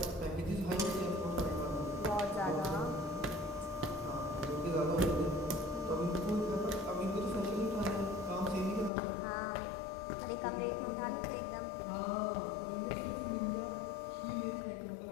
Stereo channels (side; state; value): right; drops out; at 8.9 s